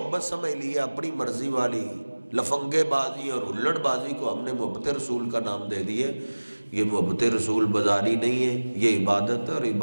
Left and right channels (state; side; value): inverted; both; correlation -1.00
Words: سمجھ لیا، اپنی مرضی والی لفنگے بازی اور ہلڑ بازی کو ہم نے محبت رسول کا نام دے دیے۔ یہ محبت رسول بازاری نہیں ہے، یہ عبادت ہے، اور